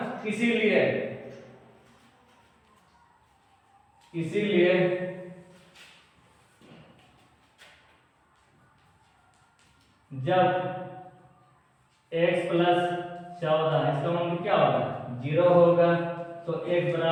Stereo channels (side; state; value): both; identical; correlation 1.00